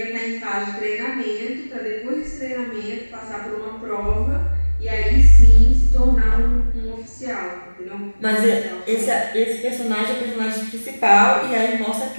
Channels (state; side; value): inverted; both; correlation -1.00